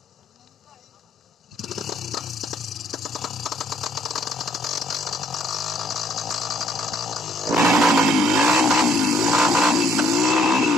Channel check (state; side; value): normal; both; correlation 0.66